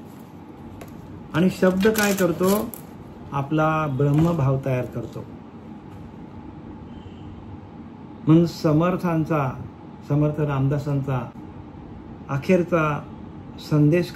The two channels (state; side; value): identical; both; correlation 1.00